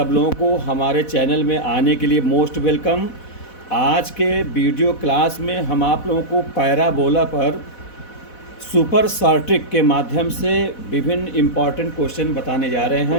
लोगों को हमारे चैनल में आने के लिए मोस्ट वेलकम। आज के वीडियो क्लास में हम आप लोगों को पैराबोला पर सुपर शॉर्ट के माध्यम से विभिन्न इम्पॉर्टेंट क्वेश्चन बताने जा रहे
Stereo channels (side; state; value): right; late; 4.1 ms